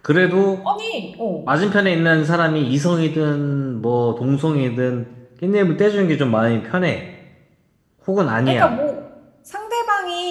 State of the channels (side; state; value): both; identical; correlation 1.00